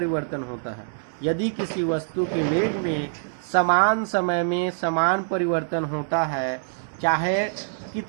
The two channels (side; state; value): left; silent; 62 dB below the other